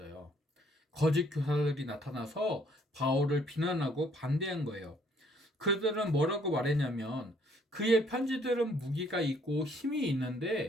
거짓 교사들이 나타나서 바울을 비난하고 반대한 거예요. 그들은 뭐라고 말했냐면 그의 편지들은 무기가 있고 힘이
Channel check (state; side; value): normal; both; correlation 0.63